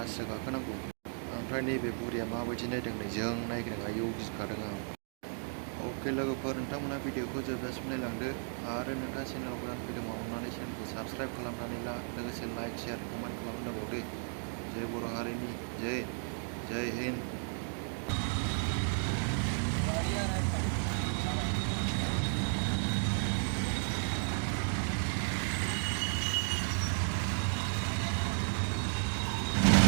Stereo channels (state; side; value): silent; left; 55 dB below the other